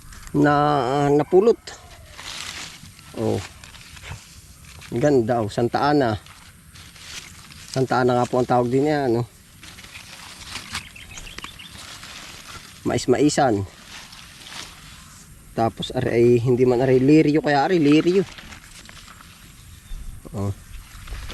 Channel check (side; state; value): both; identical; correlation 1.00